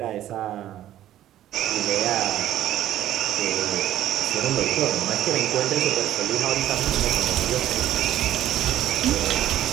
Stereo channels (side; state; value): left; quieter; 12.6 dB